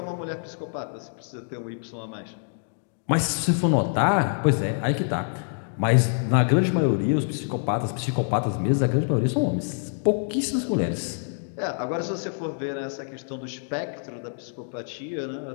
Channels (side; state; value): right; silent; digital silence